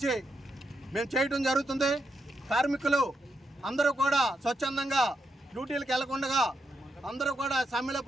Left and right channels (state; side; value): normal; both; correlation 0.83